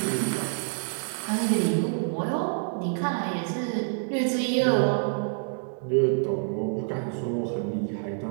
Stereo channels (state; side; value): silent; left; digital silence